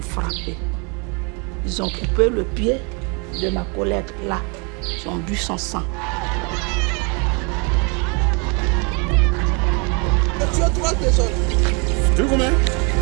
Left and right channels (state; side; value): quieter; left; 33.1 dB